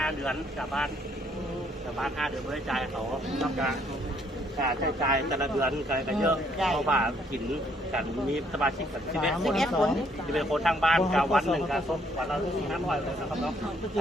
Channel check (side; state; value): both; normal; correlation 0.67